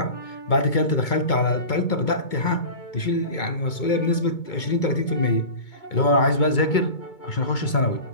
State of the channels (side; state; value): right; late; 2.2 ms